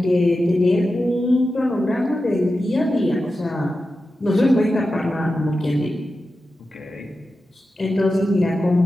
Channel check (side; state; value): both; normal; correlation 0.92